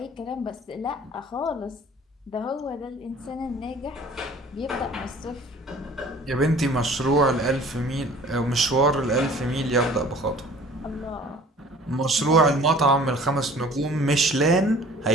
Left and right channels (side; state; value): both; normal; correlation 0.49